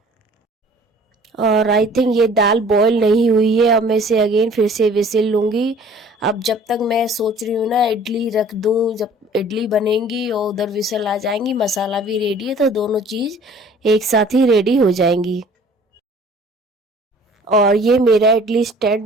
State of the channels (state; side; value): normal; both; correlation 0.51